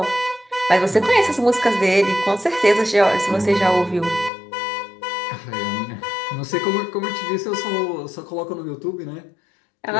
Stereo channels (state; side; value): drops out; right; at 4.3 s